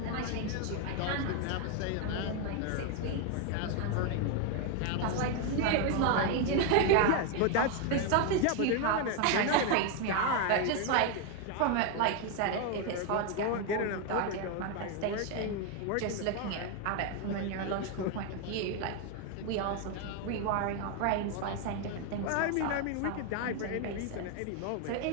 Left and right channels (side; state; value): both; different; correlation 0.01